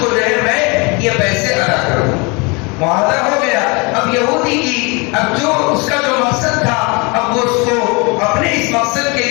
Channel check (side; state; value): right; quieter; 29.0 dB